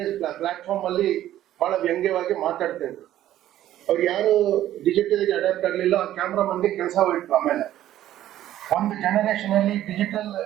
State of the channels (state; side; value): quieter; left; 12.9 dB